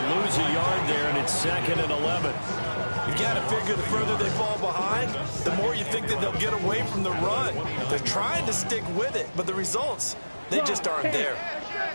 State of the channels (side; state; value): both; inverted; correlation -1.00